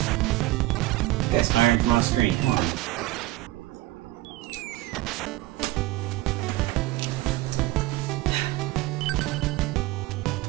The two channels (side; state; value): left; quieter; 17.7 dB